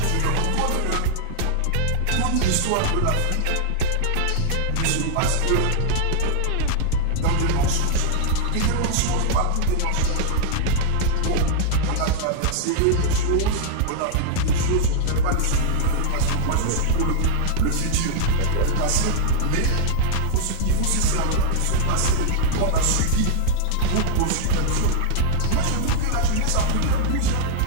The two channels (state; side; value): different; both; correlation 0.00